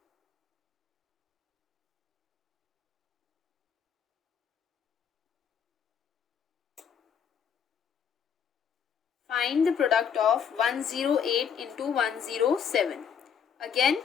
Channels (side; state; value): right; quieter; 7.5 dB